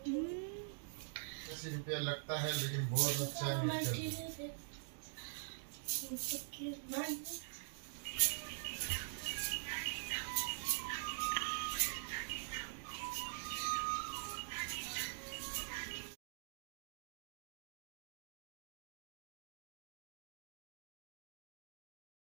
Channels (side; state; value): left; silent; digital silence